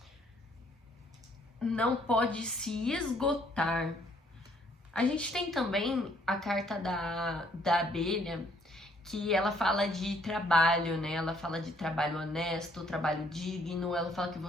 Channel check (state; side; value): normal; both; correlation 0.65